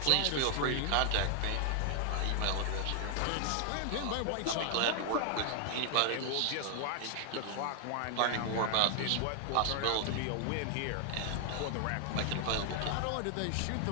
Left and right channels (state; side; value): different; both; correlation 0.00